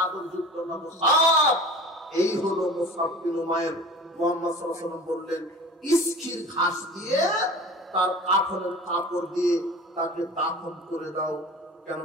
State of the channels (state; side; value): normal; both; correlation 0.39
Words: যুক্ত না মুসাব? এই হলো মুসাব বিন উমাইর। মুহাম্মদ সাল্লাল্লাহু আলাইহি ওয়াসাল্লাম বললেন, ইসখির ঘাস দিয়ে তার কাফনের কাপড় দিয়ে তাকে দাফন করে দাও,